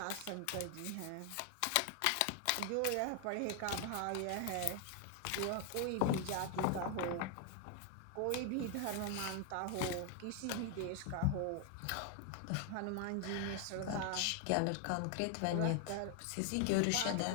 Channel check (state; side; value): different; both; correlation 0.00